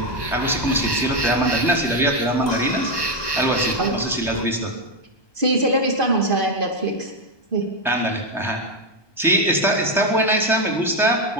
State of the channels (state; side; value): late; right; 1.2 ms